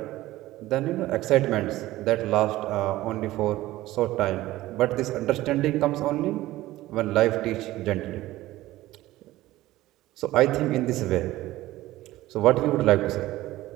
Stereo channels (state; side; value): quieter; left; 16.6 dB